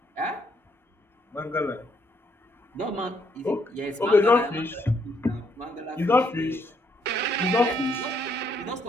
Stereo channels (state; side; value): normal; both; correlation 0.72